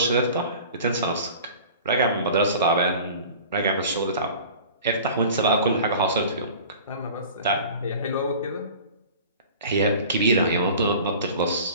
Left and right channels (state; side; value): inverted; both; correlation -0.42